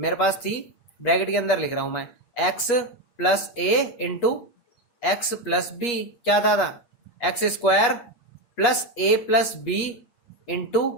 पास थी ब्रैकेट के अंदर लिख रहा हूं मैं, x plus a into x plus b, क्या था x square plus a plus B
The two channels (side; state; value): right; late; 8.4 ms